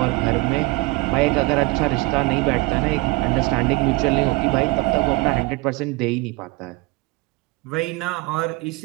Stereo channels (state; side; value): quieter; left; 23.0 dB